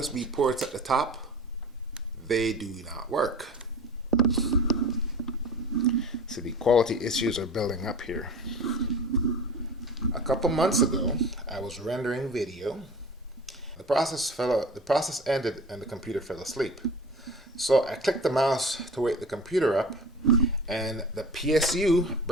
ports at the top, they do not work. So the quality issues are building up here. A couple months ago, I was rendering video. The process ended and the computer fell asleep. So I clicked the mouse to wake the computer up, and the PSU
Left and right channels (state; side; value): normal; both; correlation 0.38